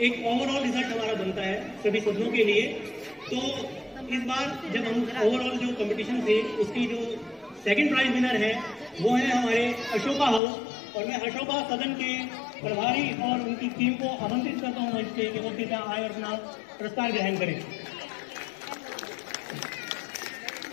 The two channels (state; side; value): drops out; right; at 10.4 s